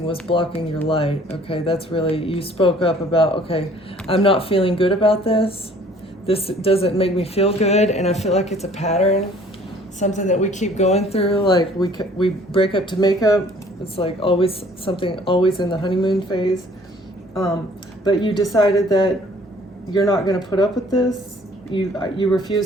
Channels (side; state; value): both; normal; correlation 0.55